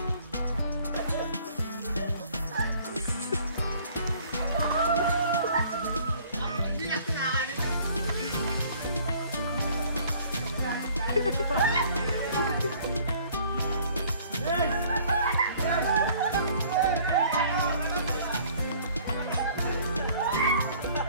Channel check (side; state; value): both; inverted; correlation -0.55